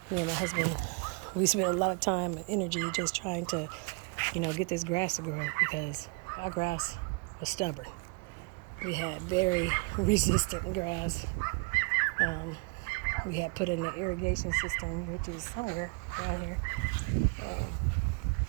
Me and my husband, we spent a lot of time and energy just trying to, get this grass to grow, because our grass was stubborn. We had very resistant grass. We had put in an irrigation system, which is somewhere around here.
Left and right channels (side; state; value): left; quieter; 31.5 dB